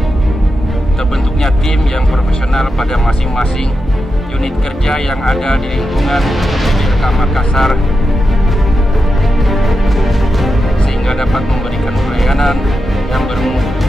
terbentuknya tim yang profesional pada masing-masing unit kerja yang ada di lingkungan PBLK Makassar, sehingga dapat memberikan pelayanan yang bermutu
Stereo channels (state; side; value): normal; both; correlation 0.89